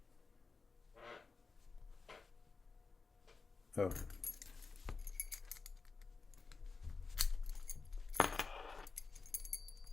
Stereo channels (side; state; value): right; quieter; 4.4 dB